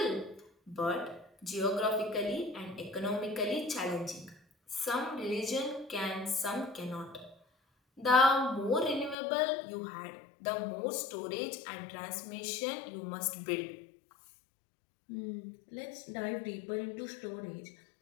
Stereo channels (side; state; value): right; drops out; at 9.2 s